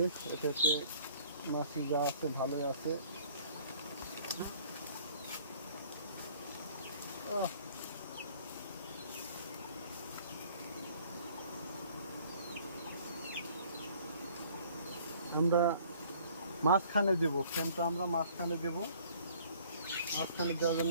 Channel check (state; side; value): inverted; both; correlation -0.56